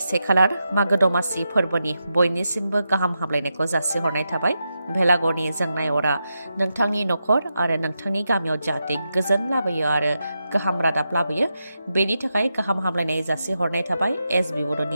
1 खालार मागो दमासि फोरबोनि बयनिसिमबो गाहाम हामलायनायखौ जासिहरनाय थाबाय भेलागरनि जोंनाय अरा नोंथांनि नखर आरो नोंथांनि गामियाव जाहाथे गोजोन लाबोयो आरो गाहाम रादाब लाबोयो बेनि थाखाय गाहाम हामलायनाय जासिहरनाय थाबाय एसबि बड'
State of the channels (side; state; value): both; inverted; correlation -0.87